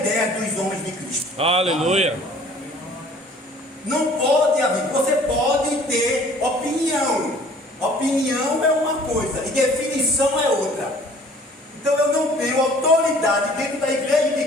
dos homens de Cristo. Aleluia. Não pode haver, você pode ter opinião. Opinião é uma coisa e definição é outra. Então eu não tenho autoridade dentro da igreja de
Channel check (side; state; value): both; normal; correlation 0.52